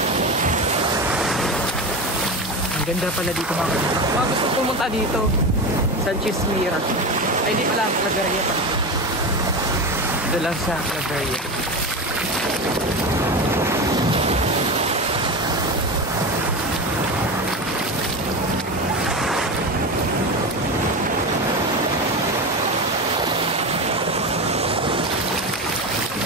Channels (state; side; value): normal; both; correlation 0.22